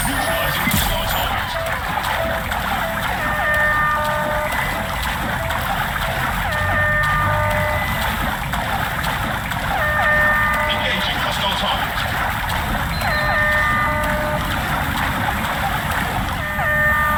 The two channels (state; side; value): identical; both; correlation 1.00